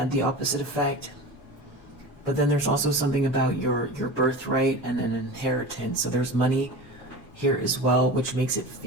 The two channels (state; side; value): noise; left; rumble, 26 dB below the sound